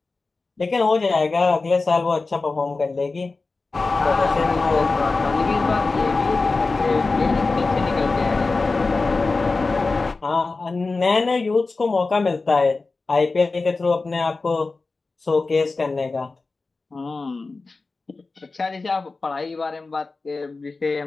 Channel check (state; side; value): quieter; right; 3.8 dB